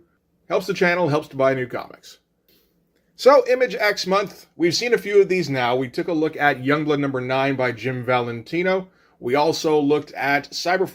Helps the channel, helps to buy new comics. So Image X Month, we've seen a few of these now. We took a look at Youngblood number 9 by Jim Valentino. We also looked at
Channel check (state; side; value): identical; both; correlation 1.00